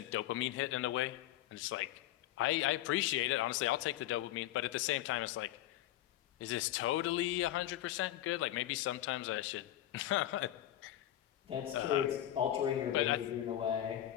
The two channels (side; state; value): right; quieter; 13.3 dB